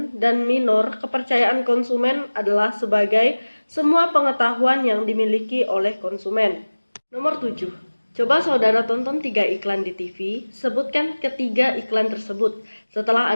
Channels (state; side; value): inverted; both; correlation -1.00